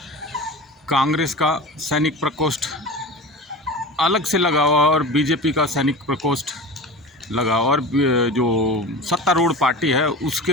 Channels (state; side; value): normal; both; correlation 0.32